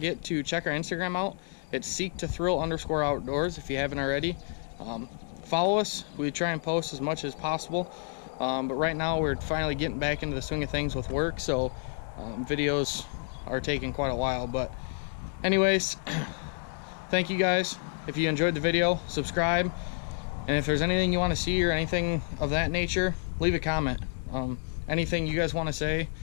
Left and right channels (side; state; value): right; silent; 58 dB below the other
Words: to check our Instagram out. It's seek2thrill_outdoors if you haven't already. Follow us. We try and post as much as possible, but right now we're finally getting back into the swing of things with work, so videos are taking quite a while. But anyways, thank you guys. If you enjoyed the video, subscribe, and if there's anything you want to see or anything of that nature, leave a comment. Anything you guys want to say,